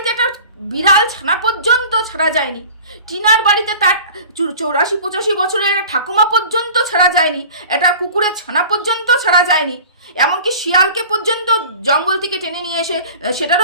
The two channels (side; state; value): both; inverted; correlation -0.43